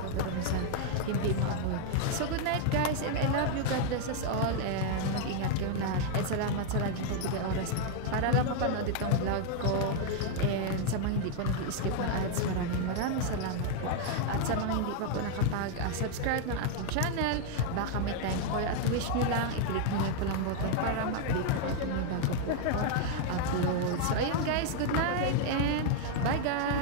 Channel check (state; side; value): different; both; correlation 0.00